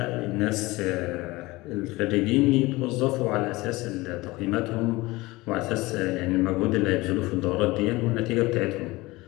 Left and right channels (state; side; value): quieter; right; 21.0 dB